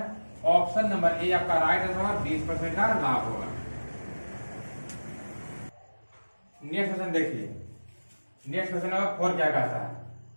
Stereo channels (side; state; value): both; inverted; correlation -1.00